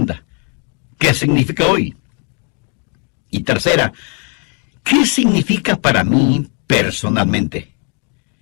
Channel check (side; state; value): right; quieter; 37.9 dB